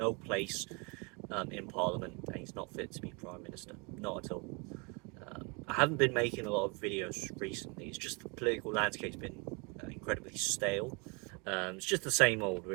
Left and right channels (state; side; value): quieter; left; 31.4 dB